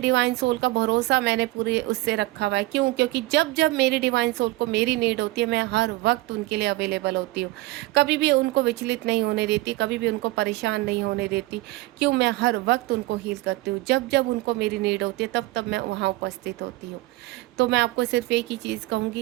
सोल का भरोसा मैंने पूरे उससे रखा हुआ है। क्यों? क्योंकि जब जब मेरी डिवाइन सोल को मेरी नीड होती है, मैं हर वक्त उनके लिए अवेलेबल होती हूँ, कभी भी उनको विचलित नहीं होने देती, कभी भी उनको परेशान नहीं होने देती। क्यों? मैं हर वक्त उनको हील करती हूँ। जब जब उनको मेरी नीड होती है तब तब मैं वहाँ उपस्थित होती हूँ। तो मैं आपको सिर्फ एक ही चीज़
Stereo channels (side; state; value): left; quieter; 19.9 dB